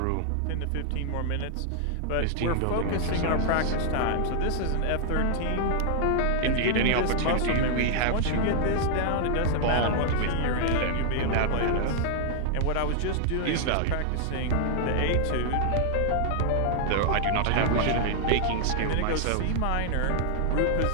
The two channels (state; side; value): different; both; correlation -0.01